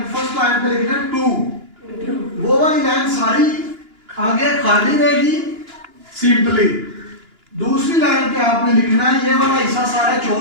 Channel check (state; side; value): late; left; 2.9 ms